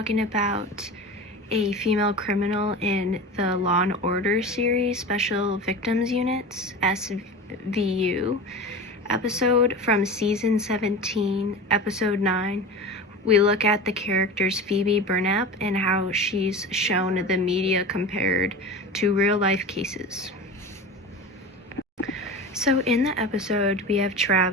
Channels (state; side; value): normal; both; correlation 0.31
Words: about a female criminal in the Law & Order series, Special Victims Units, SVU, episode from Season 17, Episode 9. We look at the characters Phoebe Burnap and how she's shown the media compared to real-life cases. So in the episode, we have